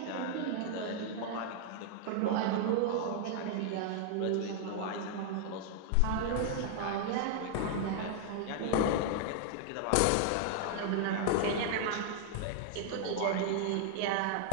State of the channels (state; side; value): different; both; correlation -0.01